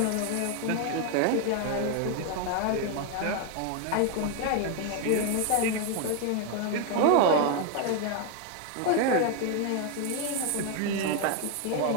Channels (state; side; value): different; both; correlation 0.01